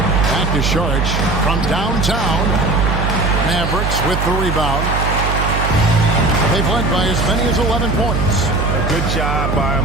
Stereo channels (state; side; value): noise; right; hum, 1 dB below the sound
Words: to Saric from downtown. Mavericks with the rebound. They've led by as many as 11 points. A good job by